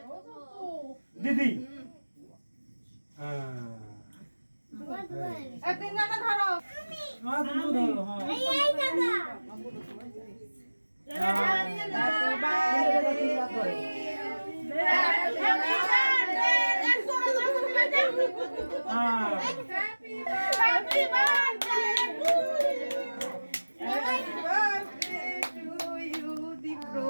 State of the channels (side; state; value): both; inverted; correlation -1.00